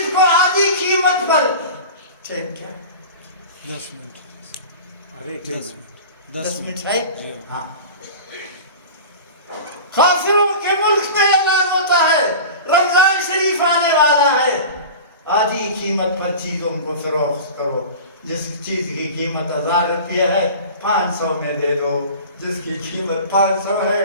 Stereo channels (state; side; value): inverted; both; correlation -0.35